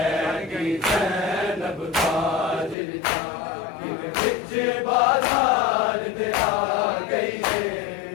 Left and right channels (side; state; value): right; drops out; at 2.8 s